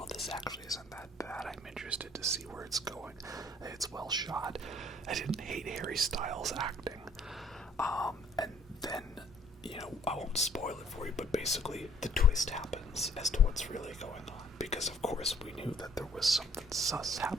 this actually isn't that bad. I'm interested to see where it's going. It's well shot. I didn't hate Harry Styles' acting. And then, I won't spoil it for you, but basically the twist happens as to what's really going on. Because, of course, we knew that there was something sus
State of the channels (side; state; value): both; normal; correlation 0.59